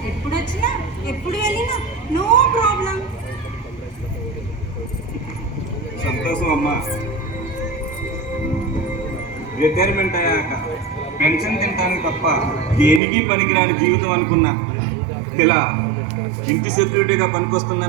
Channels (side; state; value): left; drops out; at 13.0 s